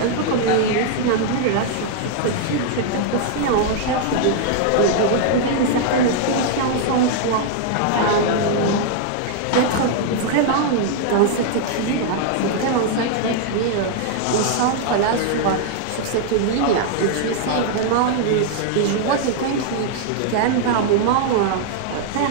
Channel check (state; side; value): different; both; correlation -0.01